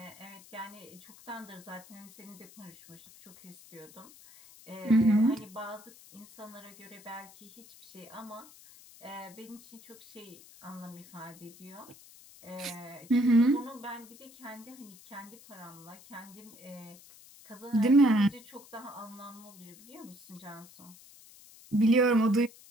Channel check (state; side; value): noise; left; hiss, 21 dB below the sound